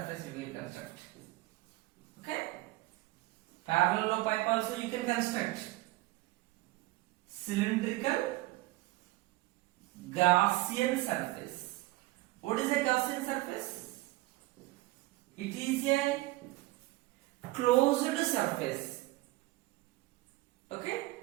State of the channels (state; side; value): quieter; left; 19.7 dB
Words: we will construct. Okay? Parallel pipe also you can construct. Cylindrical Gaussian surface. What is a Gaussian surface? It is a closed surface. Okay?